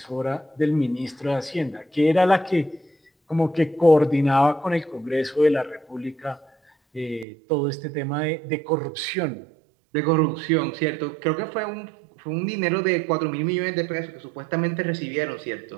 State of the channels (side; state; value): left; drops out; at 7.2 s